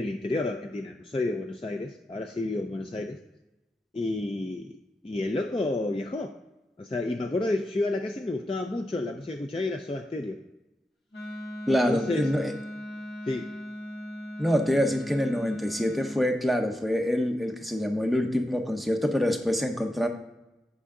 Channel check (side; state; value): both; normal; correlation 0.87